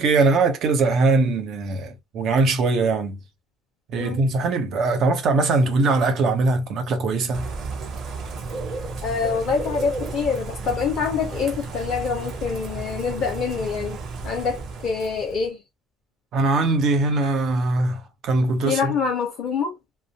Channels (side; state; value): both; normal; correlation 0.54